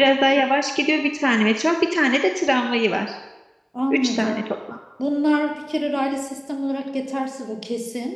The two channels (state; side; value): identical; both; correlation 1.00